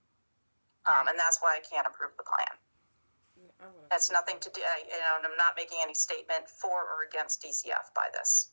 and that's why I can't approve the plan. That's nothing to do, I'm not making any statement for or against DCF by this.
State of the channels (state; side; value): inverted; both; correlation -1.00